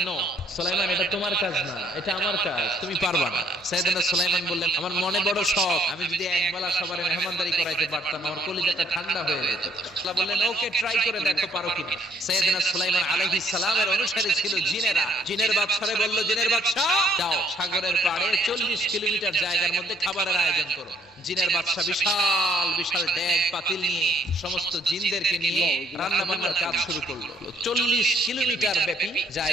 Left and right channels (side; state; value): both; normal; correlation 0.65